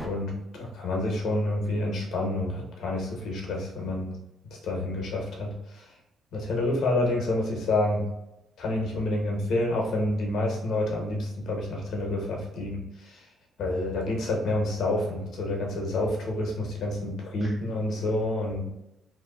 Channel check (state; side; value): normal; both; correlation 0.65